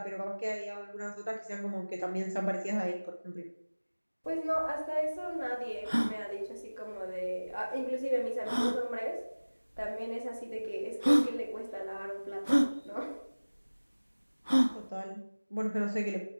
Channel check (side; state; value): both; inverted; correlation -1.00